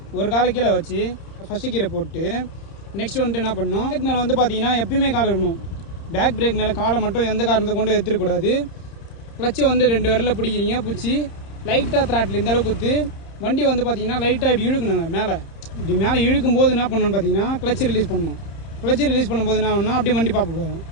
ஒரு காலை கீழே வச்சு ஃபஸ்ட்டு கீரை போட்டு நெக்ஸ்ட் வந்துட்டு என்ன பண்ணணும், பேக் மேலே வந்து பார்த்தீங்கன்னா எப்பயுமே காலை இருக்கணும். பேக் பிரேக் மேலே காலை மட்டும் எந்த காரணத்தை கொண்டு எடுத்துக்கூடாது. கிளச்சை வந்து 2 விரலில் பிடிக்கிறீங்க, பிடிச்சி லைட்டாக த்ராட்டில் இந்த அளவுக்கு குத்து வண்டி வந்து பார்த்தீங்கன்னா லைட்டாக இப்படி இழுக்கணுங்க. மேலே இப்படி மேலே இழுக்கும் போது என்ன பண்ணணும்னு பார்த்தீங்கன்னா கிளச்சை ரிலீஸ் பண்ணணும். கிளச்சை ரிலீஸ் பண்ணும்போது என்ன பண்ணணும், அப்படியே வண்டி பார்ப்போம்.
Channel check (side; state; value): right; late; 31 ms